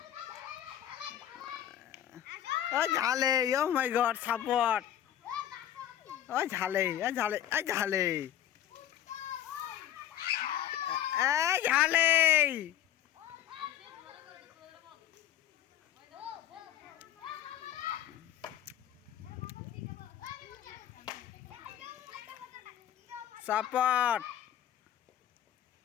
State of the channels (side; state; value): right; quieter; 11.3 dB